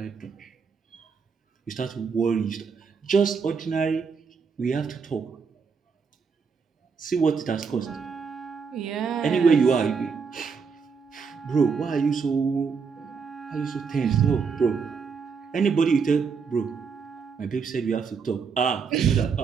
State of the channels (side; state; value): left; quieter; 5.6 dB